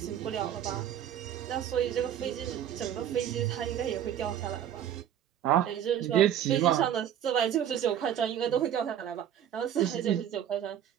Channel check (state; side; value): quieter; left; 10.2 dB